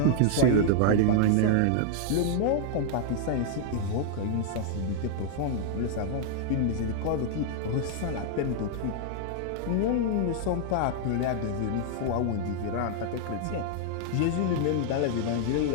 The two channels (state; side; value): different; both; correlation -0.01